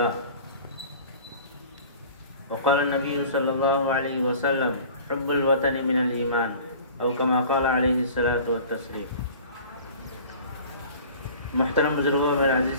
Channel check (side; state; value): both; inverted; correlation -0.44